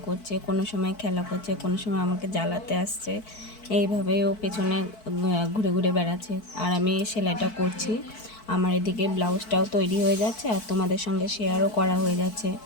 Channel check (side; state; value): right; late; 4.6 ms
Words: করছে, কোনো সময় খেলা করছে, কোনো সময় আমাকে জ্বালাতে আসছে। এইভাবেই ও পেছনে ঘুরে ঘুরে বেড়াচ্ছে, আর আমি সেলাইটা করছি। আমার এদিকে ব্লাউজটাও তৈরি হয়ে যাচ্ছে, আর তোমাদের সঙ্গে শেয়ারও করা হয়ে যাচ্ছে।